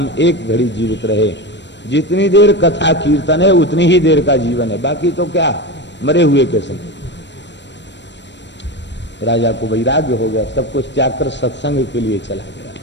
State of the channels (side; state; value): right; late; 0.52 ms